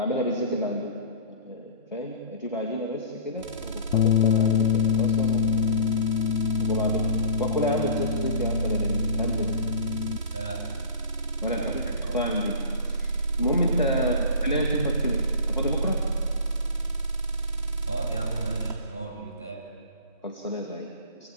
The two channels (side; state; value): both; inverted; correlation -0.42